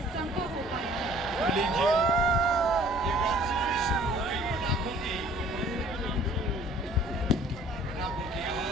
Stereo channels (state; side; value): normal; both; correlation 0.54